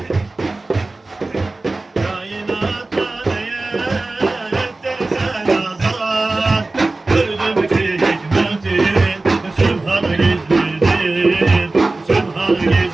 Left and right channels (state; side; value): quieter; left; 3.2 dB